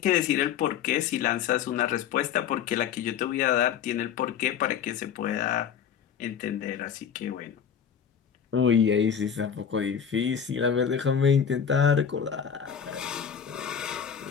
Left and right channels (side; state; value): right; quieter; 8.1 dB